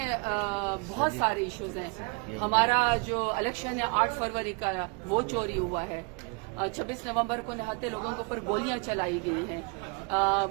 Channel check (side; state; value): left; quieter; 32.7 dB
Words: بہت سارے ایشوز ہیں۔ ہمارا جو الیکشن ہے 8 فروری کا، وہ چوری ہوا ہے۔ 26 نومبر کو نہاتے لوگوں کے اوپر گولیاں چلائی گئی ہیں۔